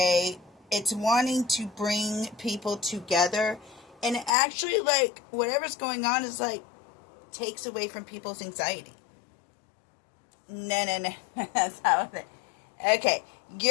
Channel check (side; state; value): right; drops out; at 4.3 s